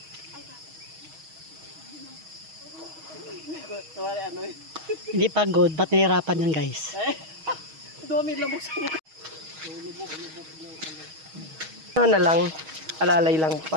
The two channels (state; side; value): late; left; 6.3 ms